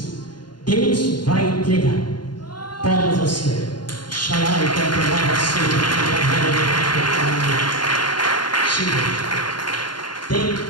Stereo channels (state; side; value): late; right; 0.71 ms